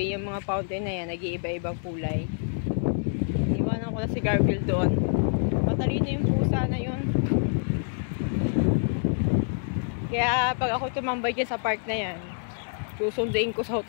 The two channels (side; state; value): right; silent; digital silence